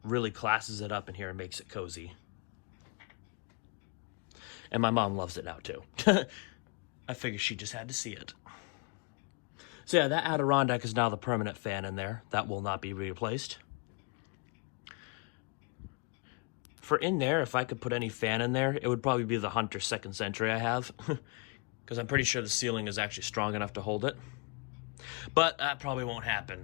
classes it up in here and makes it cozy. And my mom loves it now too. I figured she just had to see it. So yeah, that Adirondack is now the permanent fan in there. That will not be replaced. For in there, if I could put any fan in there, it would probably be the Hunter 2nd Century I have. Because I'm pretty sure the ceiling is actually strong enough to hold it. But that probably won't happen,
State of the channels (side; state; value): right; quieter; 30.3 dB